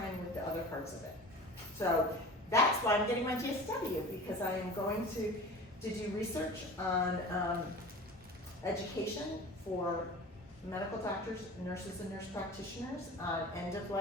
with the other parts of it. So that's why I'm getting my GSW, because I am going to do research on education for medical doctors, nurses, and nurse practitioners on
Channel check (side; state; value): both; normal; correlation 0.37